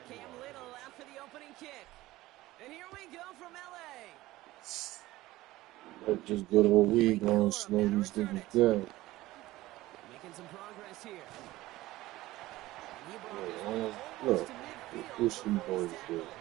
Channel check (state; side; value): quieter; left; 17.4 dB